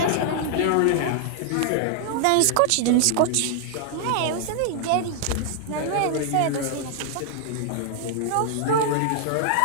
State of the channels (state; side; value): different; both; correlation 0.00